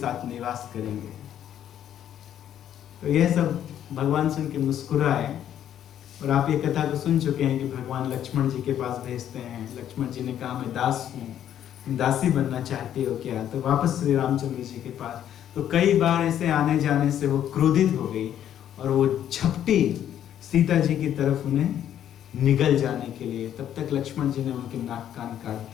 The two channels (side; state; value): right; quieter; 10.5 dB